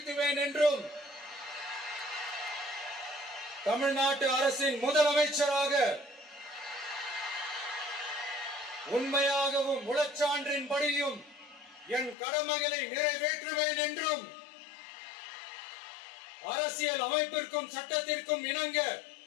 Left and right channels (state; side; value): drops out; right; at 12.2 s